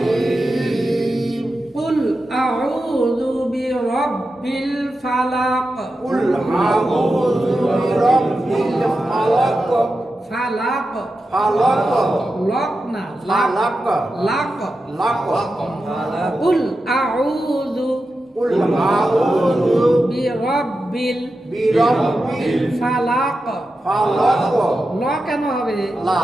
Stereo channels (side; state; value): both; normal; correlation 0.90